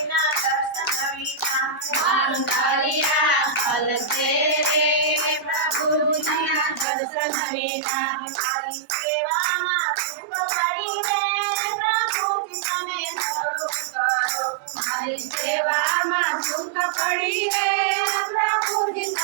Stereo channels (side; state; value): left; drops out; at 6.9 s